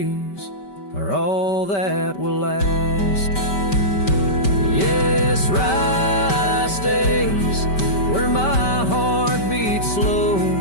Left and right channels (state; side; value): late; right; 5.2 ms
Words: are all that will last. Yes, Rye stays where my heart beats slow,